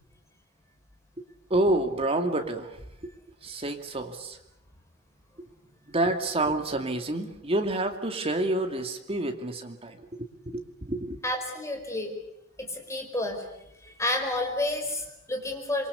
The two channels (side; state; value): both; normal; correlation 0.34